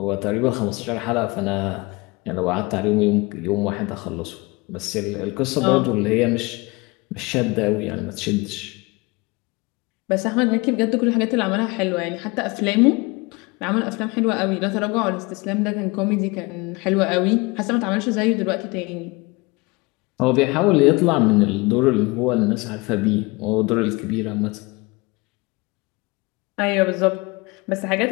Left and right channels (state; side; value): quieter; right; 25.0 dB